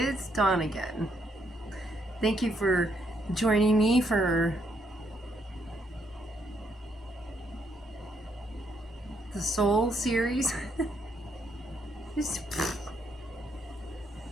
Dawn again. Thank you for joining me for the Soul series.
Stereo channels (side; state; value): both; normal; correlation 0.74